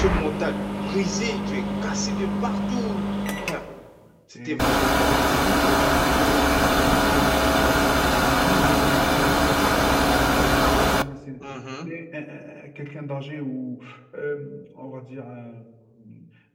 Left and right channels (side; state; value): both; identical; correlation 1.00